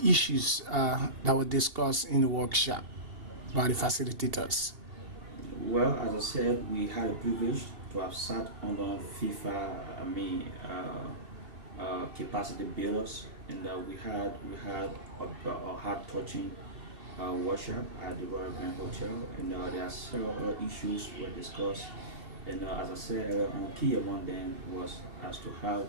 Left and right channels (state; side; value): late; left; 2.8 ms